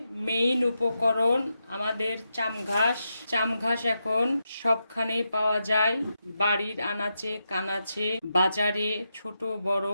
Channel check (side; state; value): both; inverted; correlation -0.86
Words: মেইন উপকরণ আমাদের চামঘাস এখন সবখানেই পাওয়া যায়, বাড়ির আনাচে কানাচে, বাজারে, ছোট বড়